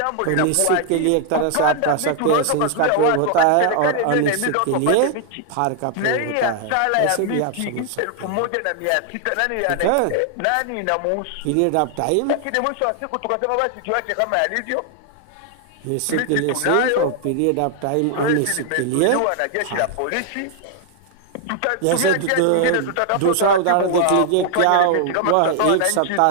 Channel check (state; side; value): different; both; correlation 0.00